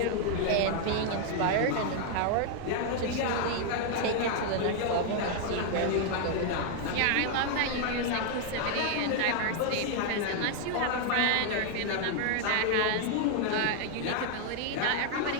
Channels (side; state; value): both; different; correlation 0.00